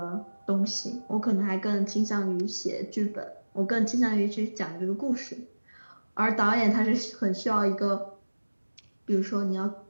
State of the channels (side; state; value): both; inverted; correlation -1.00